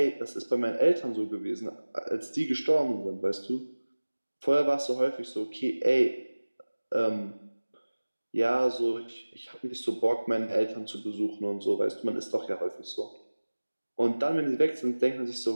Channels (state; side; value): inverted; both; correlation -1.00